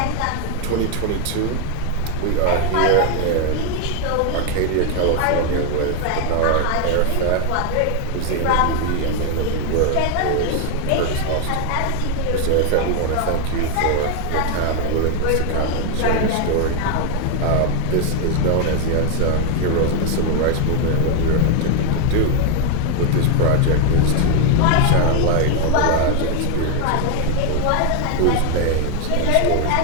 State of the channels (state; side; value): different; both; correlation 0.01